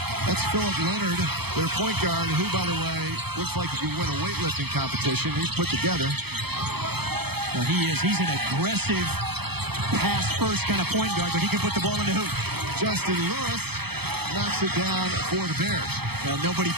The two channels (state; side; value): late; left; 0.97 ms